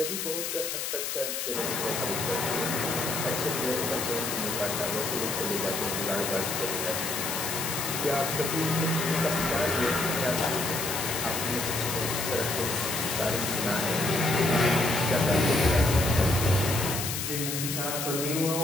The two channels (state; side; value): noise; left; hiss, 3 dB below the sound